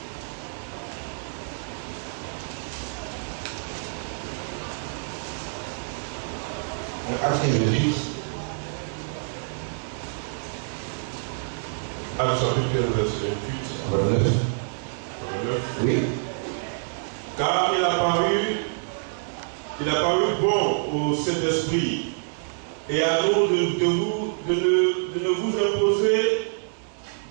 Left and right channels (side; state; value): left; silent; digital silence